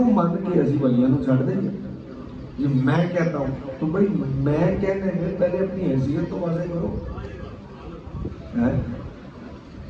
مان کے اسی ولیاں نو چھڑ دیں گے؟ یہ میں کہتا ہوں تو بھائی میں کہنے میں پہلے اپنی حیثیت تو واضح کرو۔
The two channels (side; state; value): both; identical; correlation 1.00